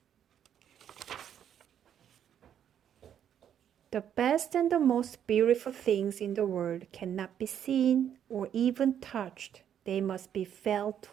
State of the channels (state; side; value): quieter; left; 9.4 dB